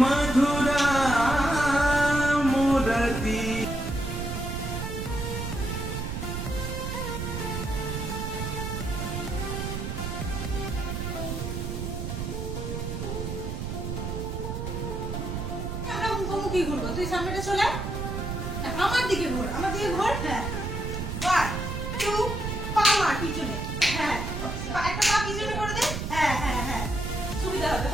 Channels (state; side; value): noise; right; rumble, 4 dB below the sound